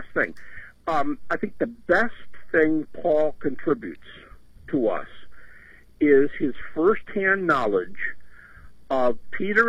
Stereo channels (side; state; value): both; identical; correlation 1.00